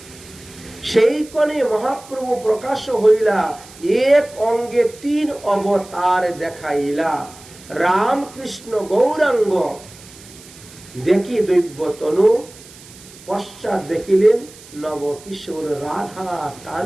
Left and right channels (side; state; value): right; noise; hiss, 20 dB below the sound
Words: সেই কোণে মহাপ্রভু প্রকাশ হইলা, এক অঙ্গে 3 অবতার দেখাইলা। রাম কৃষ্ণ গৌরাঙ্গ দেখি দৈব্য তনু, পশ্চাৎ দেখিলেন নব কিশোর রাধা